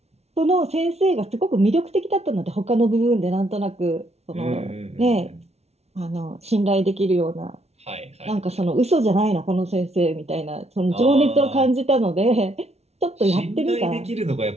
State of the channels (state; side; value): late; left; 0.31 ms